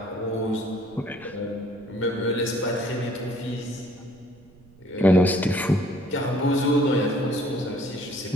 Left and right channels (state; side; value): noise; right; rumble, 26 dB below the sound